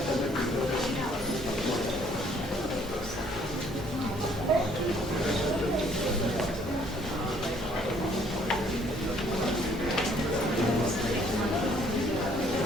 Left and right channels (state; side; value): normal; both; correlation 0.62